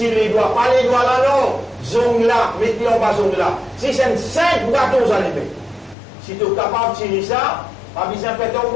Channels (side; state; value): right; drops out; at 6.0 s